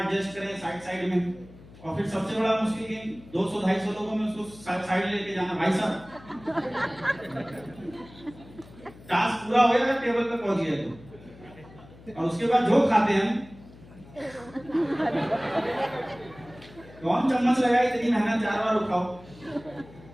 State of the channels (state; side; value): noise; left; hum, 21 dB below the sound